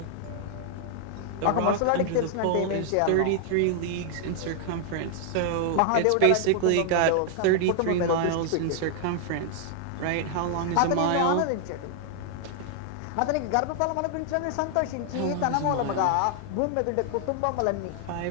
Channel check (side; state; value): both; different; correlation 0.00